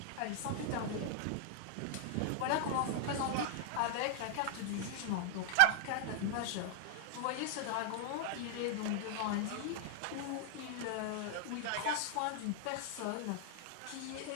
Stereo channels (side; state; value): both; different; correlation 0.00